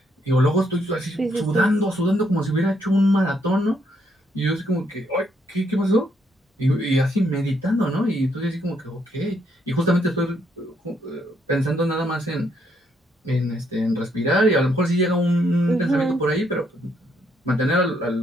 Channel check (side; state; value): both; normal; correlation 0.73